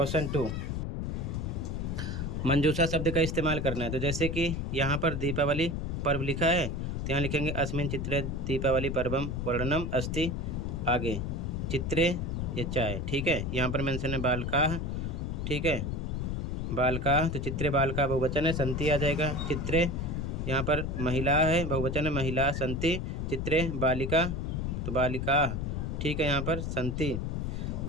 2, मंजूषा शब्द का इस्तेमाल करना है। तो जैसे कि यहाँ पर दीपावली पर्व लिखा है, तो यहाँ लिखेंगे अस्मिन चित्रे दीपावली पर्वम वर्णनम अस्ति। आगे, चित्रे, ये चाय। ठीक है, यहाँ पर मेंशन है बालकाः। ठीक है, बालकाः, तो चित्रे बालका बहुवचन है, संति आ जाएगा। चित्रे, यहाँ पर महिला है, बहुवचन है, महिला संति। चित्रे बालिका, तो बालिकाः। ठीक है, यहाँ पर संति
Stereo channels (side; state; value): left; noise; rumble, 2 dB below the sound